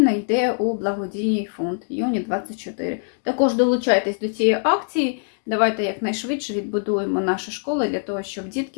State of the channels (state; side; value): silent; right; digital silence